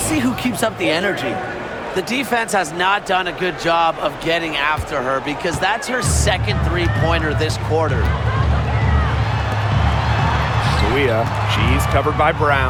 who keeps up the energy. The defense has not done a good job of getting after her because that's her second three-pointer this quarter. Suia, she's covered by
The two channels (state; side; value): identical; both; correlation 1.00